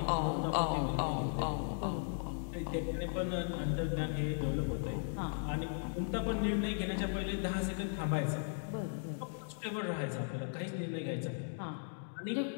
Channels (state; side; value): silent; right; digital silence